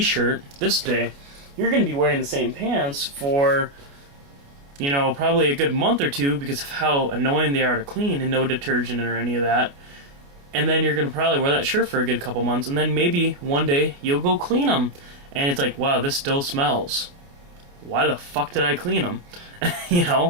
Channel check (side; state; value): left; late; 29 ms